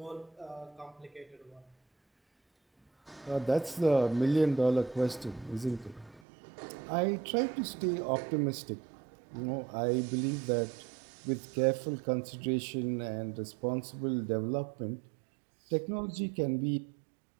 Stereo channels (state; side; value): drops out; left; at 6.2 s